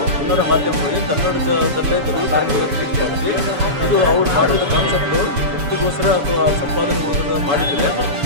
ಕನ್ನಡ ಮಾಧ್ಯಮಗಳಿಗೆ ಕನ್ನಡದಲ್ಲೇ ಮಾಡಿಸಿ ಇದು ಅವ್ರು ಮಾಡಿದ ಕಾನ್ಸೆಪ್ಟು ವೃತ್ತಿಗೋಸ್ಕರ ಅಥವಾ ಸಂಪಾದನೆಗೋಸ್ಕರ ಮಾಡಿದರೆ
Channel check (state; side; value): late; left; 7.1 ms